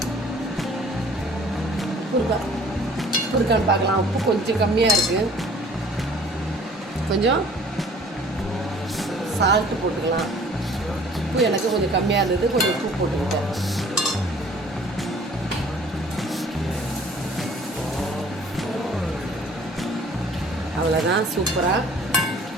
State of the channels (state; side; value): normal; both; correlation 0.52